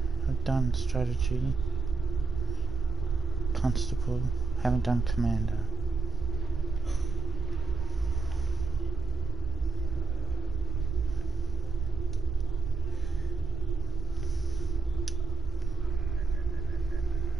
I've done strategy. Constable. Haven't done commander.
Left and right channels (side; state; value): left; quieter; 4.5 dB